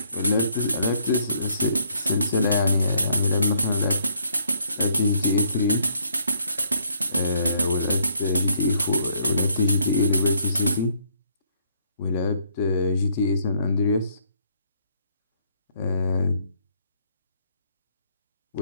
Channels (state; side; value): inverted; both; correlation -0.67